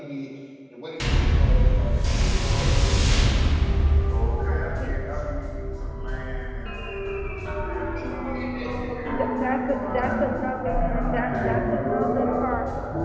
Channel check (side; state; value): both; identical; correlation 1.00